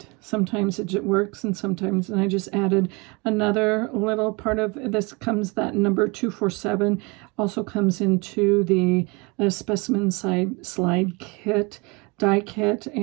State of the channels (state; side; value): quieter; left; 28.1 dB